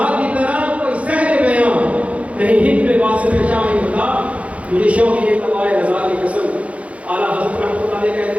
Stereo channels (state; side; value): late; left; 0.064 ms